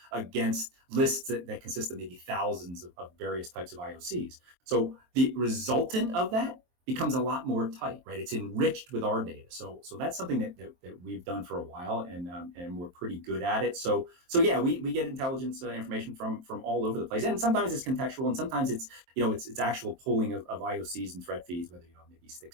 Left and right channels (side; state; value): left; late; 23 ms